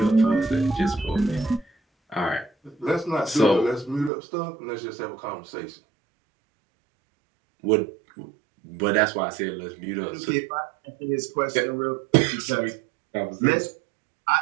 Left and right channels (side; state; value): left; drops out; at 4.1 s